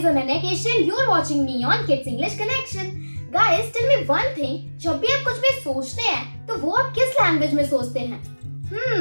Ananya Keshan. You are watching me on Kids English Connection. Guys, tell me one thing. जब भी आप कुछ भी सोचते हैं, तो वो आप किस लैंग्वेज में सोचते हैं?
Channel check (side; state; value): both; inverted; correlation -1.00